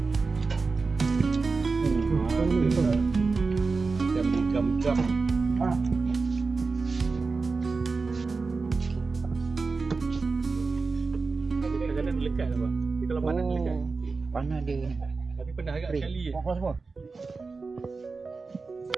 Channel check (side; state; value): left; quieter; 4.2 dB